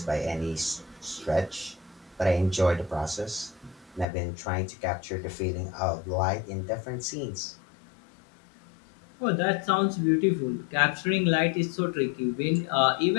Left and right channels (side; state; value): right; drops out; at 4.0 s